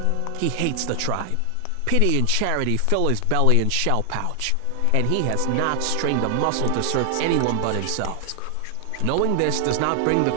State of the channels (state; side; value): different; both; correlation 0.00